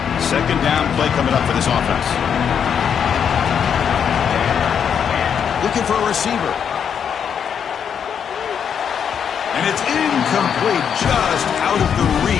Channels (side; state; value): right; quieter; 7.7 dB